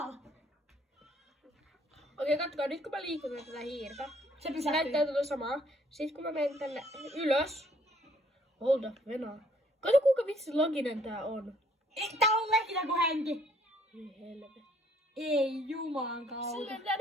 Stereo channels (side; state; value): both; normal; correlation 0.63